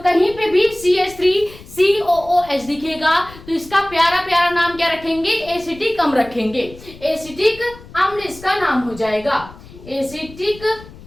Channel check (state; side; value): noise; left; rumble, 19 dB below the sound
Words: पे भी CH3COOH दिखेगा तो इसका प्यारा प्यारा नाम क्या रखेंगे, एसिटिक अम्ल रखेंगे। एसिटिक अम्ल इसका नाम हो जाएगा, एसिटिक